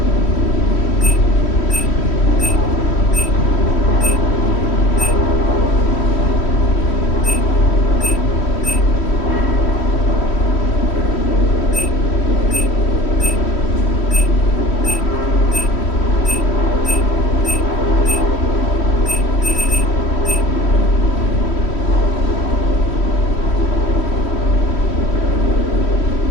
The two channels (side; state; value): right; late; 3.1 ms